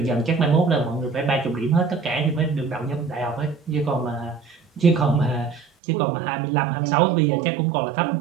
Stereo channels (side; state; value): left; drops out; at 5.7 s